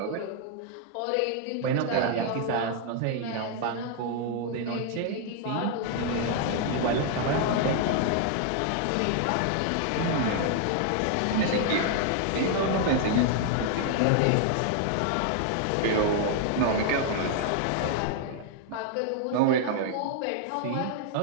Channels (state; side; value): different; both; correlation 0.00